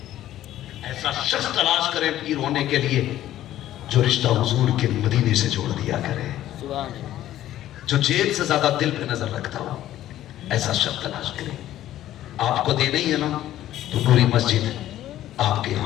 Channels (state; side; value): quieter; right; 13.2 dB